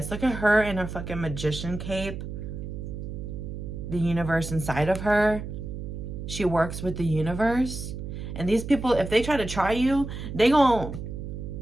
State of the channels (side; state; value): right; noise; hum, 7 dB below the sound